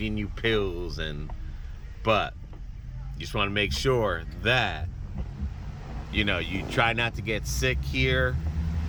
you pills, but you just want to make sure that you try not to get sick here.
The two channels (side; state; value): both; identical; correlation 1.00